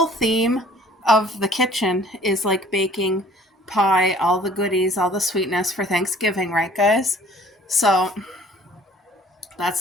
theme of the kitchen is like baking pie, all the goodies, all the sweetness for Thanksgiving, right guys? So that's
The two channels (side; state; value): both; normal; correlation 0.53